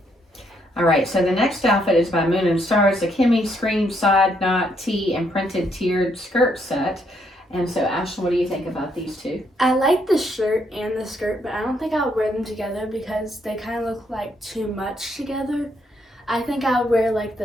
All right, so the next outfit is by Moon and Stars, the Kimmie Screen Side Knot Tee and Printed Tiered Skirt Set. And so, Ashlynn, what do you think about these two? I like the shirt and the skirt, but I don't think I'll wear them together because they kind of look like too much together. I think I'll wear like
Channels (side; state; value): both; normal; correlation 0.73